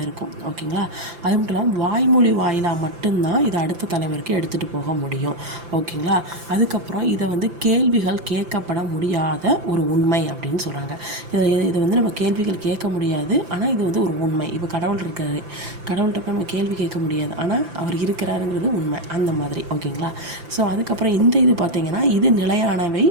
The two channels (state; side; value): late; left; 5.8 ms